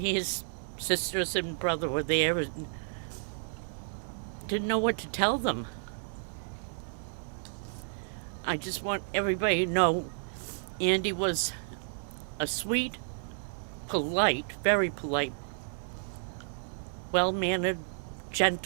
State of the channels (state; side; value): silent; left; digital silence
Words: sisters and brother were there and didn't know what to tell them. I just want everybody to know Andy was a sweet, polite, very polite, well-mannered,